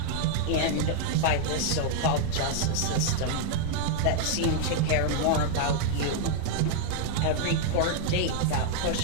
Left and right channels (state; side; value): different; both; correlation 0.00